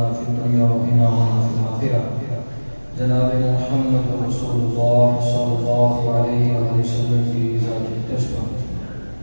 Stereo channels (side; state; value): both; inverted; correlation -1.00